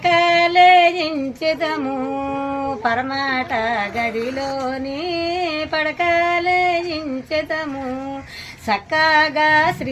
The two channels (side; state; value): both; identical; correlation 1.00